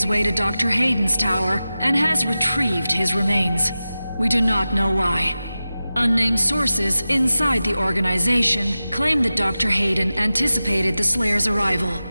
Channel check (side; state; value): both; inverted; correlation -0.95